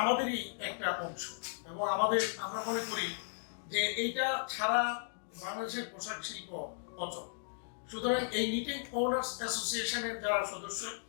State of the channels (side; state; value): right; silent; digital silence